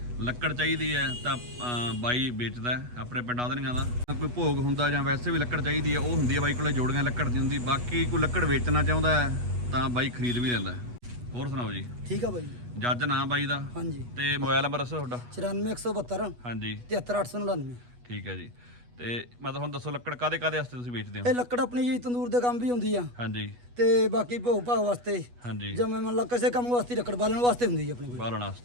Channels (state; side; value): late; left; 8.2 ms